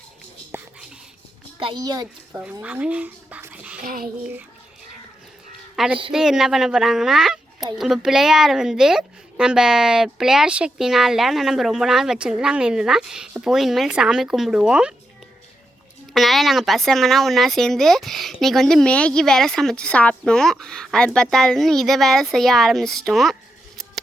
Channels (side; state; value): both; normal; correlation 0.85